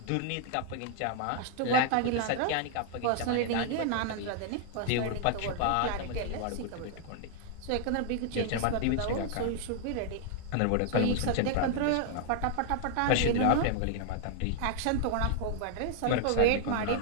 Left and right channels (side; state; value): both; different; correlation 0.00